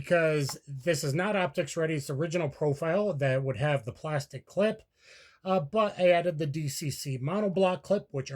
this is not optics ready. It's the original profile that would have the plastic clip. But I added the DCC monoblock clip, which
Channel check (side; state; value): both; identical; correlation 1.00